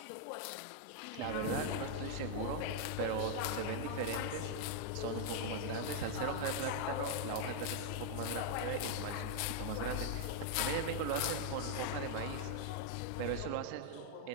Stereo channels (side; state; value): both; different; correlation 0.00